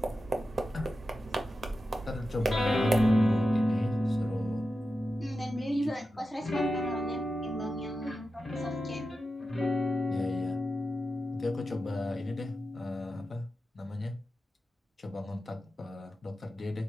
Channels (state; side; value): normal; both; correlation 0.91